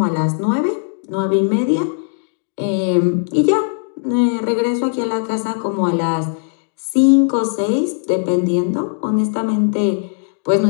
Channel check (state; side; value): silent; right; digital silence